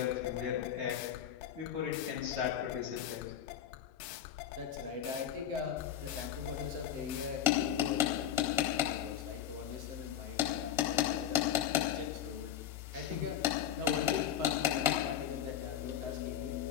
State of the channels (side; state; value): right; quieter; 10.3 dB